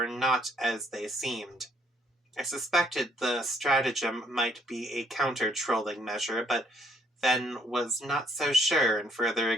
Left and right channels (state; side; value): normal; both; correlation 0.67